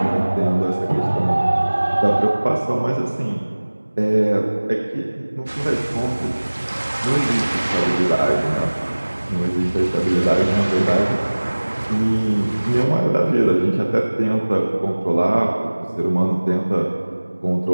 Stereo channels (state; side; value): inverted; both; correlation -1.00